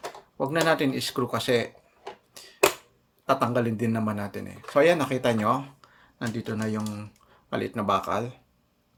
Huwag na natin i-screw kasi tatanggalin din naman natin So, ayan, nakita nyo. Nandito na yung maliit na bakal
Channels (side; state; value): both; identical; correlation 1.00